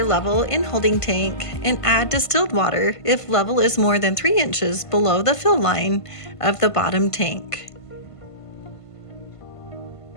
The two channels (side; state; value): right; late; 1.5 ms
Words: level in holding tank and add distilled water if level is more than 3 inches below the fill line of the bottom tank.